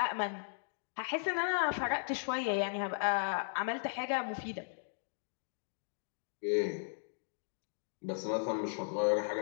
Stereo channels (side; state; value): right; silent; digital silence